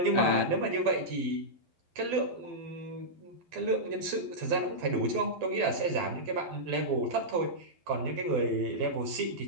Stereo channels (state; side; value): late; left; 12 ms